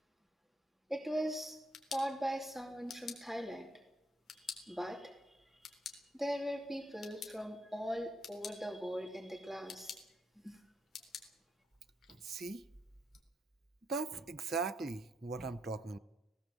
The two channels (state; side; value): normal; both; correlation 0.78